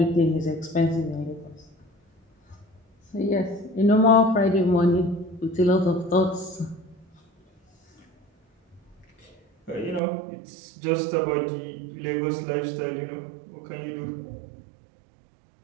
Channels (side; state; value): left; drops out; at 10.0 s